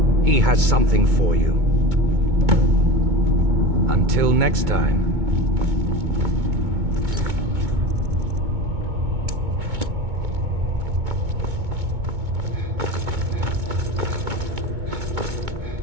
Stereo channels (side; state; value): left; late; 2.2 ms